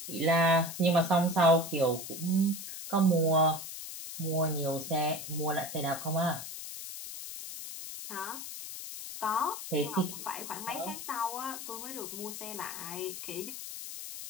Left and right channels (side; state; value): left; noise; hiss, 9 dB below the sound